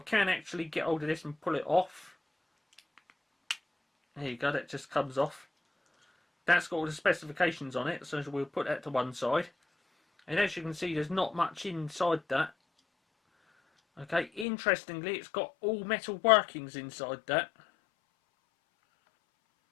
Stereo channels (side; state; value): right; drops out; at 14.5 s